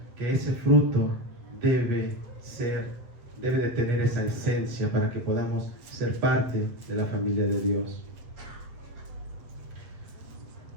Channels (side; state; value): left; late; 7.7 ms